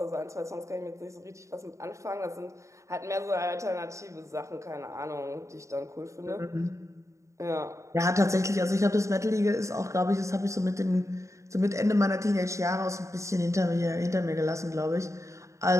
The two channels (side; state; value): left; late; 0.15 ms